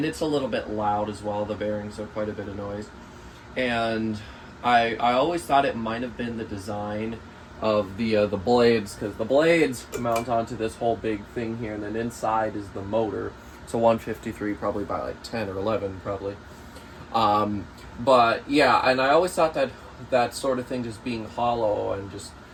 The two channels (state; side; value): identical; both; correlation 1.00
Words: it's a little bit loud as well. The bearings are quite a bit of noise. and I always thought it might have been the design of the blades, because the blades mount onto this whole big thing here, and then inside is the motor. It's a 153, probably by like 10 or 11, probably. But yeah, and I always thought that that sort of thing just being hollow and just